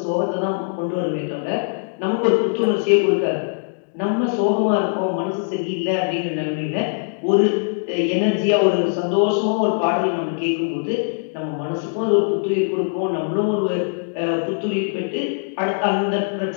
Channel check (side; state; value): right; silent; digital silence